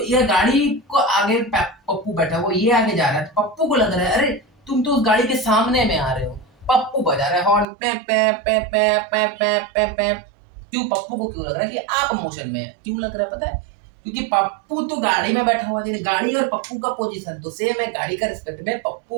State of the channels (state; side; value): drops out; left; at 7.7 s